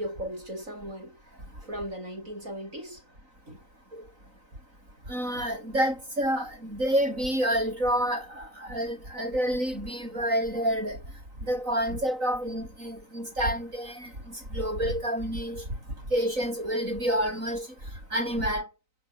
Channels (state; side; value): late; left; 3.9 ms